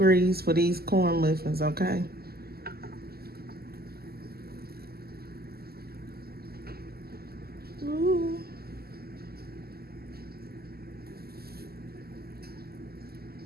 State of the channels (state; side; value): late; left; 0.45 ms